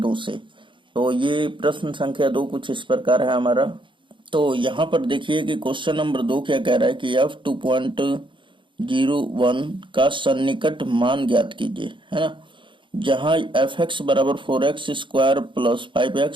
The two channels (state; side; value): late; left; 0.24 ms